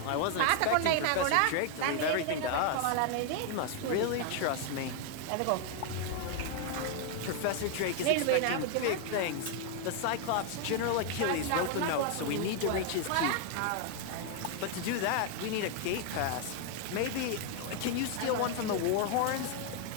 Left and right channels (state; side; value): different; both; correlation 0.00